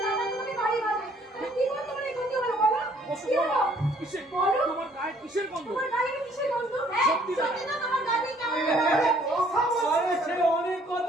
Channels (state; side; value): normal; both; correlation 0.62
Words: দাদা তোমাকে বাড়ি বাজে। কি করে তোমার এই ক্ষতি হলো বলো? কি হলো? কিসের বলো? তোমার গায়ে কিসের গন্ধ? তোমার গায়ে কিসের গন্ধ? হ্যাঁ সত্যি সত্যি না, তোমার গায়ে কেমন আরে সে অনেক